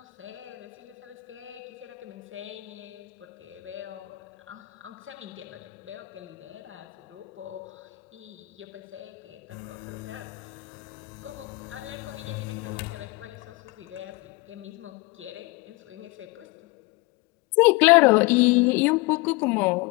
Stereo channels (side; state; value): right; quieter; 23.2 dB